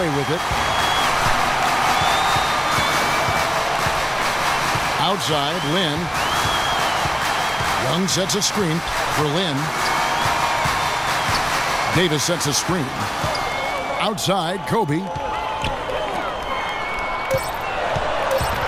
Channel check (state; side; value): identical; both; correlation 1.00